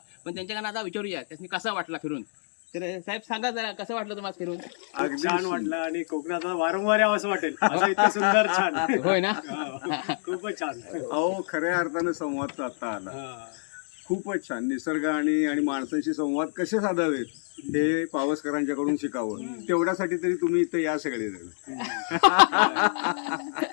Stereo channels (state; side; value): silent; right; digital silence